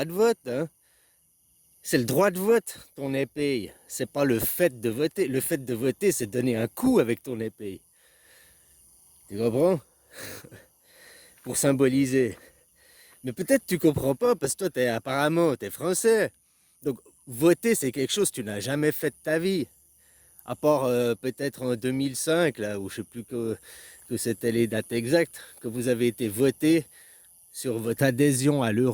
de vote, hein. C'est le droit de vote, ton épée. C'est pas le fait de voter. Le fait de voter, c'est donner un coup avec ton épée. Tu comprends? Pour symboliser. Mais peut-être tu comprends pas parce que toi, apparemment, t'es français. Donc, voter, c'est quelque chose que tu n'as jamais fait de ta vie. À part peut-être en 2005, là, où je sais plus que c'était les dates exactes, que vous avez été voté sur votre adhésion à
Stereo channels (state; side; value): identical; both; correlation 1.00